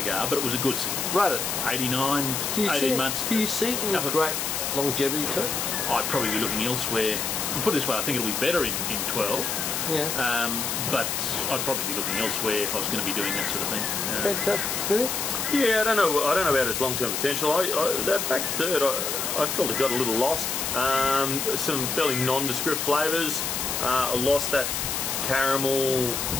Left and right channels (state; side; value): noise; left; hiss, 1 dB below the sound